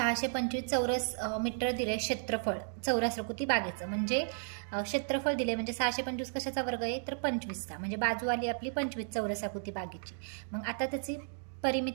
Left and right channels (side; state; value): left; silent; digital silence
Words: चौरस मीटर दिले क्षेत्रफळ चौरसाकृती बागेचं. म्हणजे क्षेत्रफळ दिले म्हणजे 625 कशाचा वर्ग आहे? तर 25चा. म्हणजे बाजू आली आपली 25 चौरसाकृती बागेची. मग आता त्याची